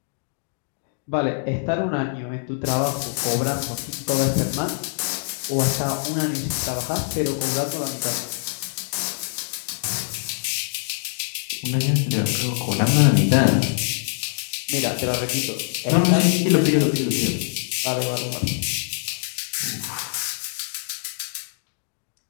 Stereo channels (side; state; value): right; silent; digital silence